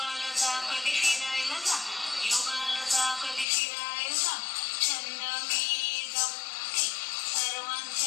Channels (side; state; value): right; drops out; at 3.5 s